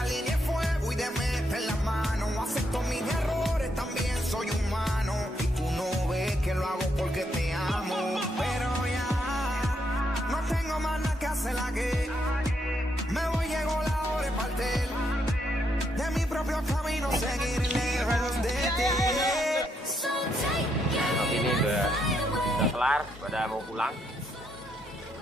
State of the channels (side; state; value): both; normal; correlation 0.77